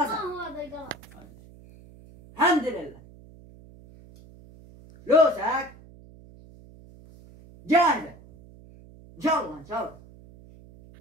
هو هذا الغلط. الحمد لله. لوسك جاهزة ان شاء الله ان شاء الله.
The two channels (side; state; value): right; noise; hum, 22 dB below the sound